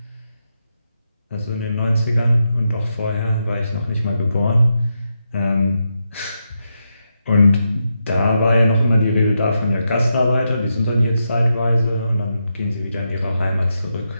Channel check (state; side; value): inverted; both; correlation -0.85